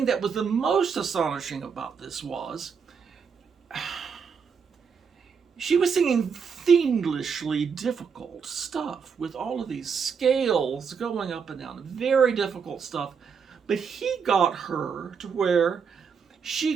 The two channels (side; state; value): left; quieter; 6.2 dB